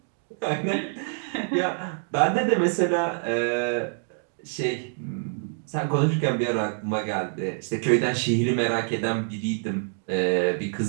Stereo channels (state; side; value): silent; left; 58 dB below the other